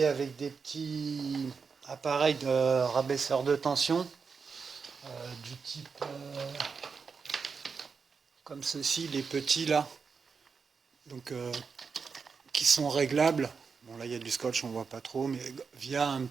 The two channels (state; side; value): quieter; left; 5.4 dB